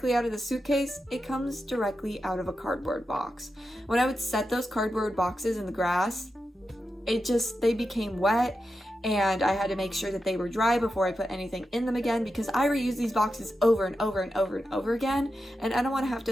out of the suitcase, it comes directly out of a cardboard box. When I would set those cardboard boxes in the grass, they became wet, and I had to make sure that they were dry before I put anything in them again, because I reuse these boxes over and over and over and over again, and I don't want to have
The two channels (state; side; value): normal; both; correlation 0.89